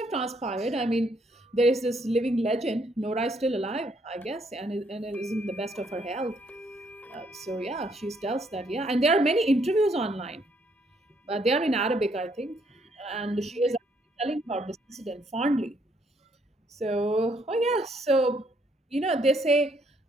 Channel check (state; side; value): normal; both; correlation 0.70